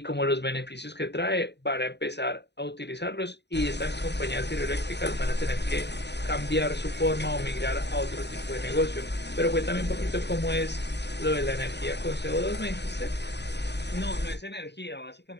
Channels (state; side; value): late; right; 0.50 ms